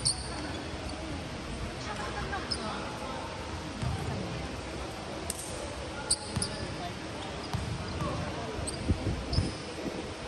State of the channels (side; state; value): both; identical; correlation 1.00